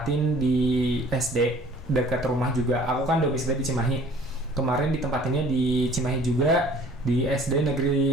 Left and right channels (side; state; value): both; normal; correlation 0.52